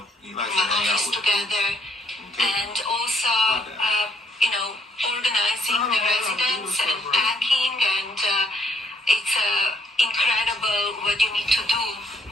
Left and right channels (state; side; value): normal; both; correlation 0.69